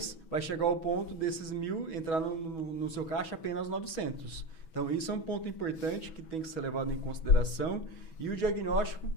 vai chegar ao ponto desses 1.000 entrar no seu caixa apenas 900. Então, isso é um ponto importante que tem que ser levado em consideração, e o diagnóstico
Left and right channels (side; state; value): right; late; 6.2 ms